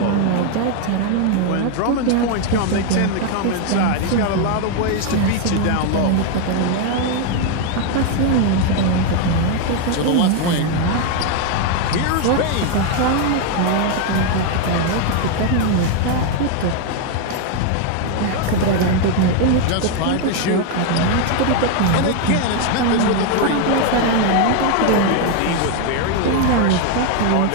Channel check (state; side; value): different; both; correlation 0.01